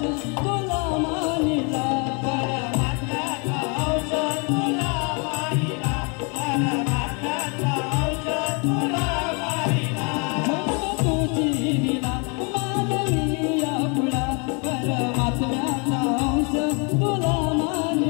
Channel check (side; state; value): right; quieter; 34.2 dB